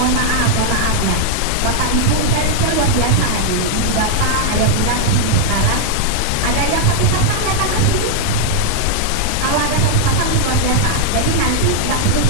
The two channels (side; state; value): both; different; correlation -0.01